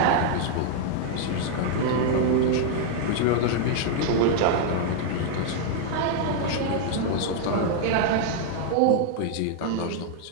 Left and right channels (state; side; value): different; both; correlation 0.00